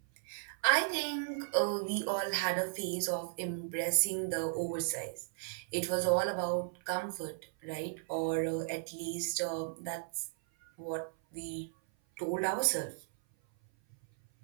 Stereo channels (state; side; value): silent; left; 54 dB below the other